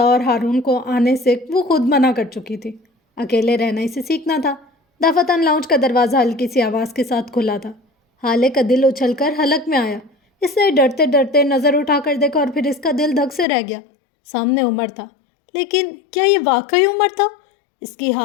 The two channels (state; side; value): drops out; right; at 13.5 s